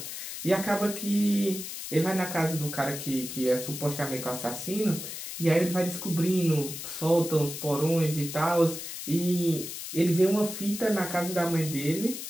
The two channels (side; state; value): left; noise; hiss, 8 dB below the sound